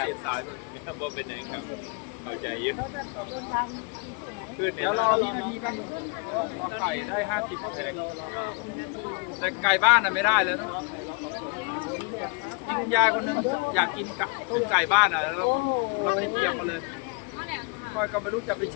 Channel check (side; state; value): right; quieter; 32.9 dB